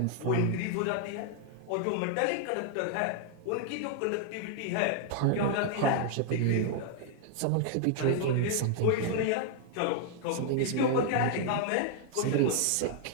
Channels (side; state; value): both; different; correlation 0.00